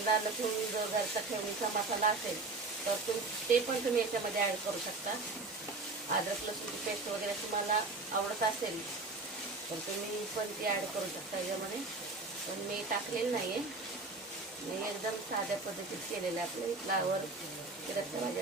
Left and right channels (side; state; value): left; quieter; 3.6 dB